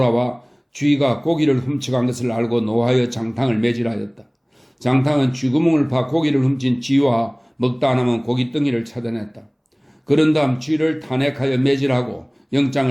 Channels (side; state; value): both; identical; correlation 1.00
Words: 쥐가 고기를 훔쳐간 것을 알고 노하여 장탕을 매질하였다. 장탕은 쥐구멍을 파 고기를 훔친 쥐와 먹다 남은 고깃덩이를 찾아냈다. 그런 다음 쥐를 탄핵하여 매질하고